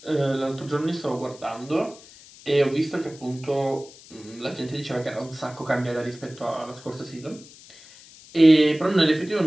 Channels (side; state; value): left; noise; hiss, 21 dB below the sound